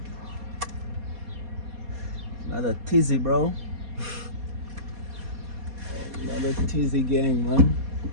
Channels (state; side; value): late; left; 4.2 ms